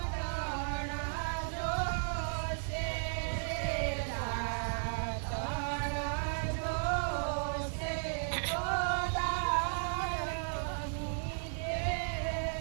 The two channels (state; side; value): silent; left; digital silence